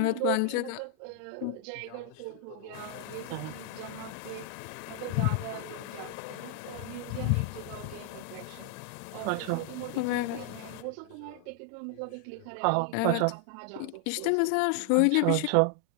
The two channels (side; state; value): both; different; correlation 0.00